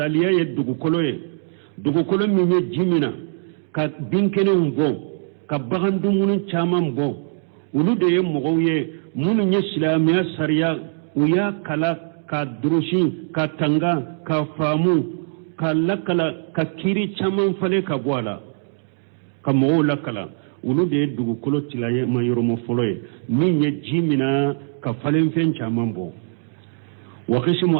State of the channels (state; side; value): silent; left; digital silence